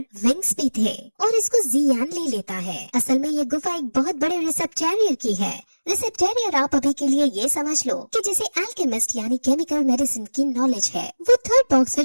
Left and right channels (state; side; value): inverted; both; correlation -1.00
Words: विंग्स भी थे और इसको जियान ले लेता है। असल में ये गुफा एक बहुत बड़े रिसेप्टेरियर की है। रिसेप्टेरियर आप अभी के लिए ये समझ लो कि जैसे एल्केमिस्ट यानी केमिकल मेडिसिन की नॉलेज है। वो थर्ड बॉक्स फिर